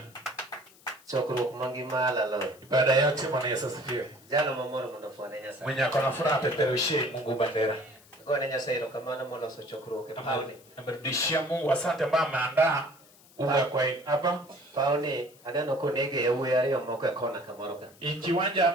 Chokro mangima lalo. Ibada yote Bwana Yesu asifiwe. Jana mamoro mnafanya nyasa. Mwenye akona furaha peperushe Mungu bandera. Kwa nyasa hilo kama na mola so chokro ke pauni. Amerudishia Mungu asante ambaye ameandaa uga kwa hapa. Pauni adano konege ya uwe yale moko kona kamoroka. Ikiwanja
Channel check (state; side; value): noise; left; hiss, 26 dB below the sound